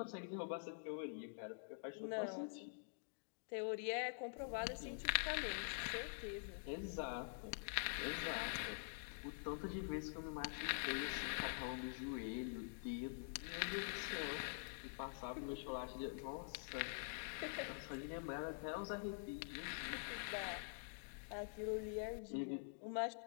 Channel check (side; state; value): right; silent; digital silence